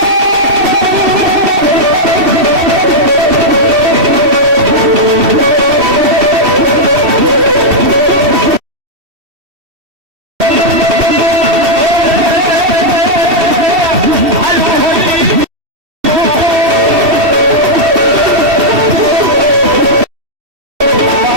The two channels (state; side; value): late; left; 2.7 ms